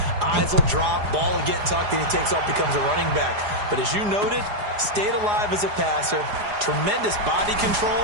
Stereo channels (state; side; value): late; left; 4.9 ms